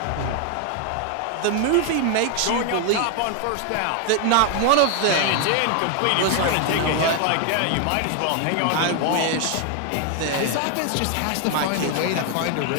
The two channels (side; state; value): both; different; correlation 0.01